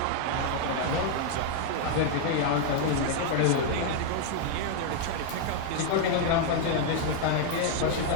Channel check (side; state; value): both; different; correlation 0.00